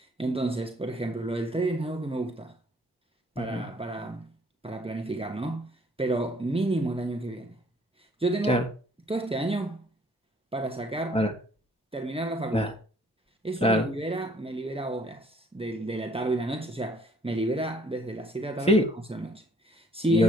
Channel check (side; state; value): both; normal; correlation 0.61